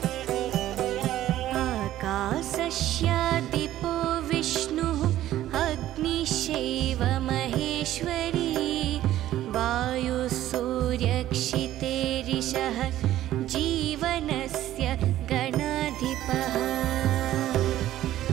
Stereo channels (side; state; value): left; quieter; 13.5 dB